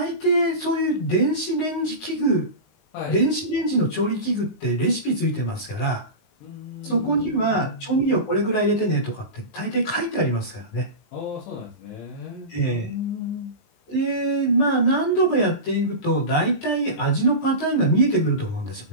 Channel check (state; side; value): late; right; 19 ms